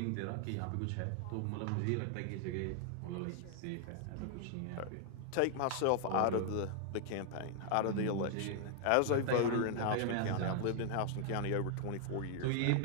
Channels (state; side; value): different; both; correlation 0.00